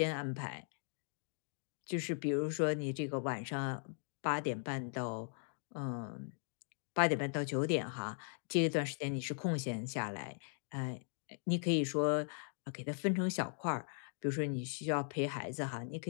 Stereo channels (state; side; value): silent; right; digital silence